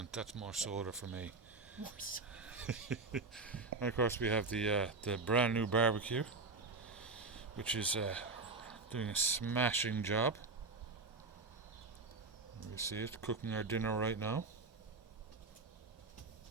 That's more soda for me. More so. And of course, we have the brand new barbecue, which is doing a smashing job. We see it cooking our dinner right now.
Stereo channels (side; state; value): left; quieter; 3.7 dB